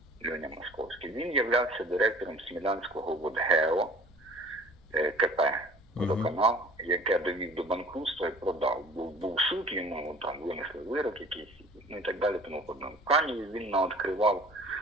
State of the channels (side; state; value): right; noise; rumble, 29 dB below the sound